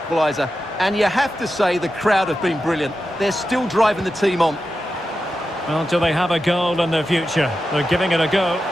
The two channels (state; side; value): normal; both; correlation 0.91